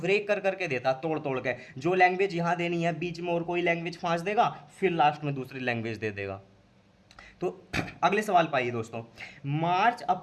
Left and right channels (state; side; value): identical; both; correlation 1.00